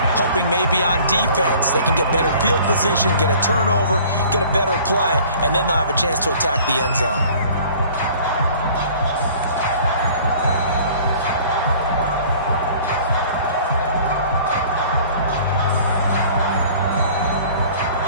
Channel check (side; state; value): both; inverted; correlation -0.50